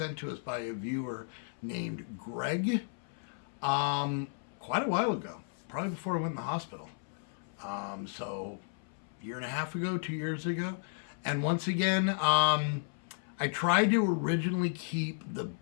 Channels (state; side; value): silent; right; 55 dB below the other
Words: to us by a viewer named Greg quite a while ago, probably before I went in the hospital. So a year and a half ago, 2 years ago. And once again, I tried to originally keep the